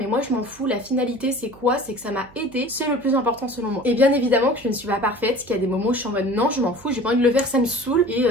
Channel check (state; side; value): noise; right; hum, 24 dB below the sound